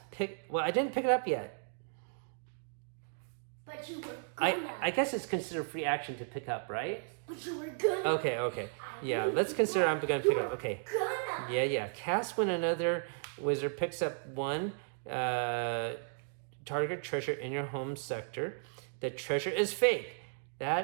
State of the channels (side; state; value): left; silent; digital silence